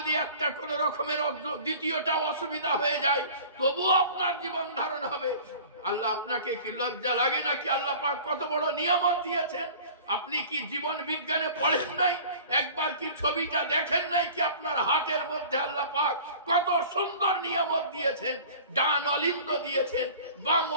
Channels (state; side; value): inverted; both; correlation -0.44